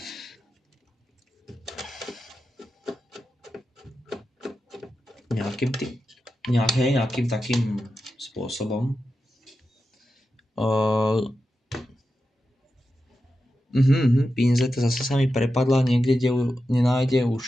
Nejakým takým spôsobom. Pinzeta zase sa mi prepadla niekde, kde ju nenájde už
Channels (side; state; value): both; normal; correlation 0.90